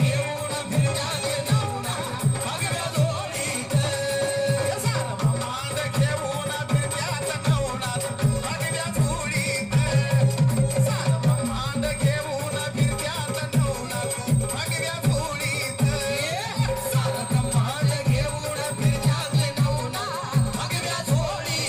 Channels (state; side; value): identical; both; correlation 1.00